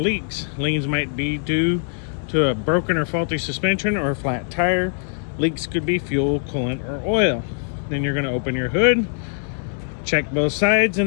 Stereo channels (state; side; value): silent; right; 64 dB below the other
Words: Leans might be due to a broken or faulty suspension or a flat tire. Leaks could be fuel, coolant, or oil. Then you're going to open your hood, check both sides,